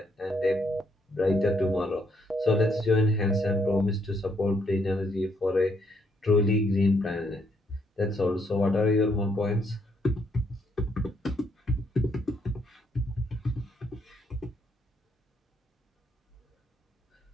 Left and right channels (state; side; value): normal; both; correlation 0.73